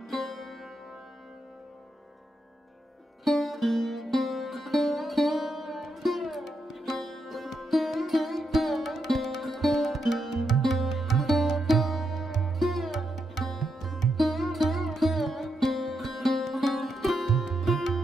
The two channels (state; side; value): normal; both; correlation 0.83